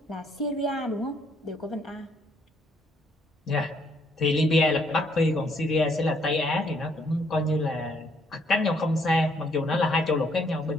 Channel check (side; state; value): both; normal; correlation 0.69